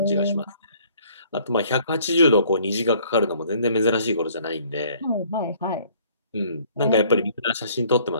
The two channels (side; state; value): both; inverted; correlation -0.58